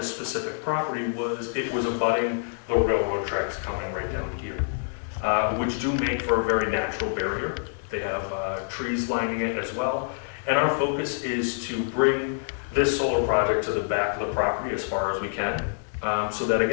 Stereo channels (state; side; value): silent; right; digital silence